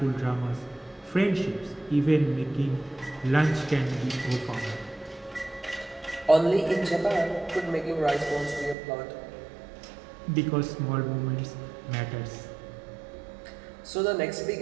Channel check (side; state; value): left; drops out; at 8.8 s